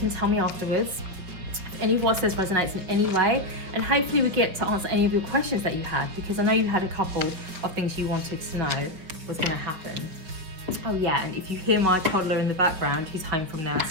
tell me afterwards if any of what says resonates in any way, and hopefully we get to answer any of your questions that you had, because I know you had a couple of things you wanted to know was going to happen. Oh yeah, and if you hear my toddler in the background, he's home from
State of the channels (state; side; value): late; left; 5.2 ms